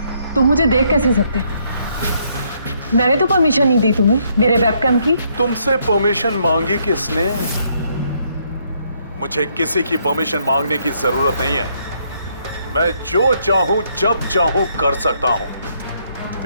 तुम मुझे देख कैसे सकते हो? मैंने तो परमिशन नहीं दी तुम्हें मेरे वेबकैम की। तुमसे परमिशन मांगी किसने? मुझे किसी की परमिशन मांगने की जरूरत नहीं है। मैं जो चाहूं जब चाहूं कर सकता हूं।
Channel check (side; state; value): both; inverted; correlation -0.72